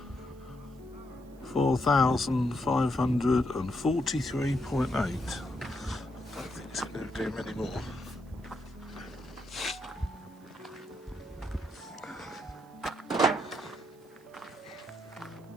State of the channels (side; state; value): right; noise; hiss, 30 dB below the sound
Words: 4,543.8. I don't think it's going to do many more.